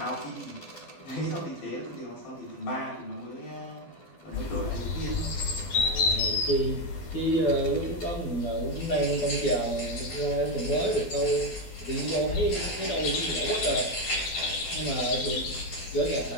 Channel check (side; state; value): right; late; 12 ms